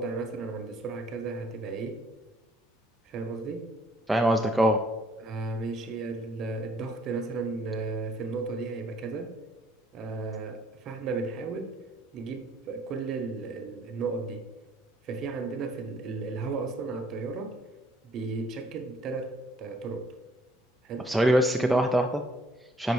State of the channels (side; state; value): both; normal; correlation 0.62